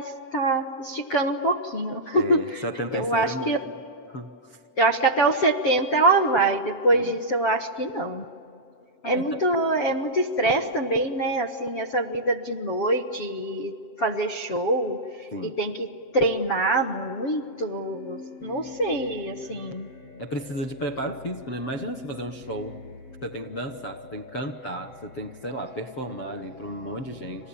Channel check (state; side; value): late; right; 7.7 ms